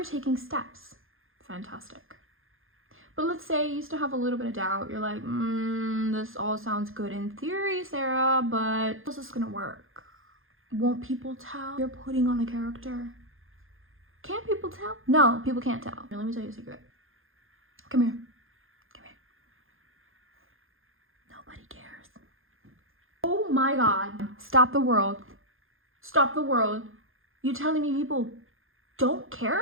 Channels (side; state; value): left; late; 0.60 ms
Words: taking steps. Fantastic. But let's say you still have a little bit of doubt. You're like, this all sounds good in theory, Sarah, but how's this gonna work? Won't people tell you're putting on a character? Can't people tell? No, people can't tell. Here, let me tell you a secret. Come here. Nobody cares. Oh my God. Stop the world. Stop the world. You telling me people don't